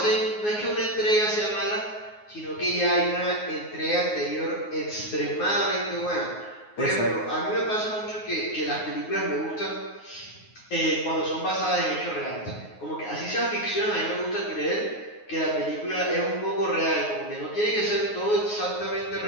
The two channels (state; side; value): late; right; 9.5 ms